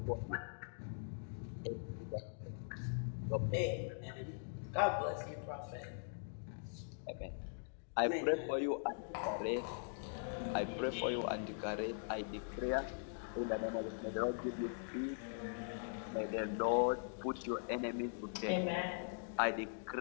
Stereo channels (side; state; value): right; silent; digital silence